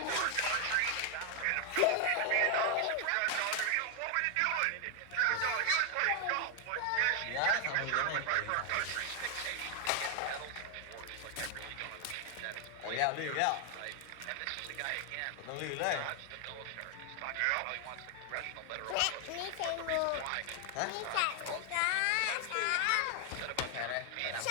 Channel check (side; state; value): both; different; correlation 0.01